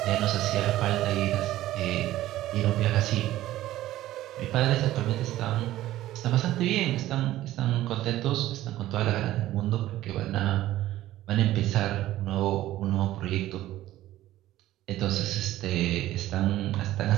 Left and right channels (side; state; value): left; quieter; 14.7 dB